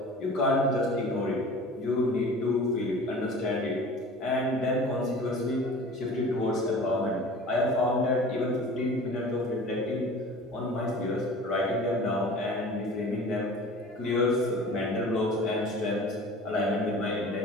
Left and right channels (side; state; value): both; normal; correlation 0.41